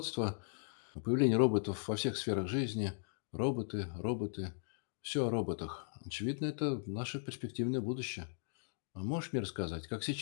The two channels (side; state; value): right; silent; digital silence